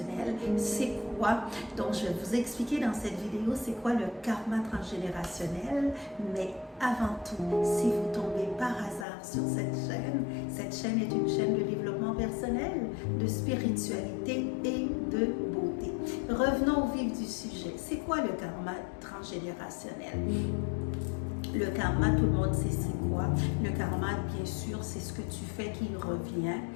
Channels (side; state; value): right; drops out; at 9.1 s